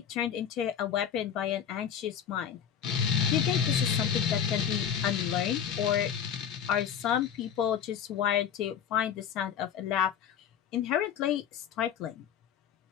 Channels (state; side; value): quieter; right; 8.5 dB